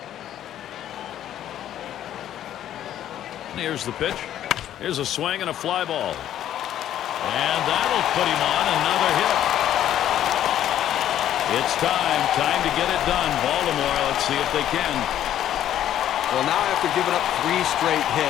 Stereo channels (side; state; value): right; quieter; 11.4 dB